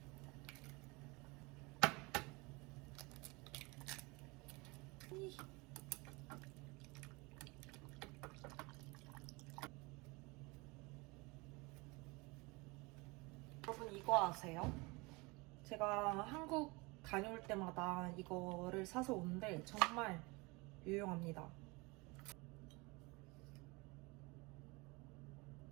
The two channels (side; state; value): left; quieter; 25.8 dB